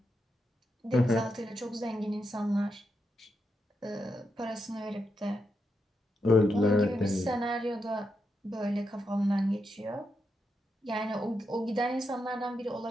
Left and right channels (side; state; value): both; normal; correlation 0.84